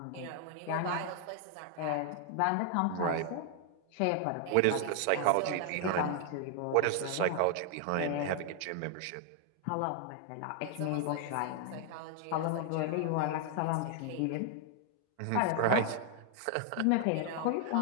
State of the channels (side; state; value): both; different; correlation 0.00